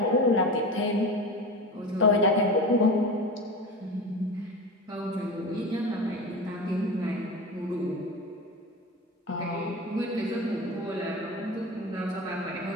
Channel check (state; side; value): normal; both; correlation 0.28